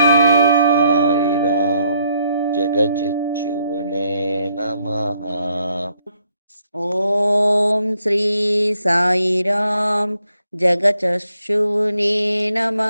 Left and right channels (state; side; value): inverted; both; correlation -0.72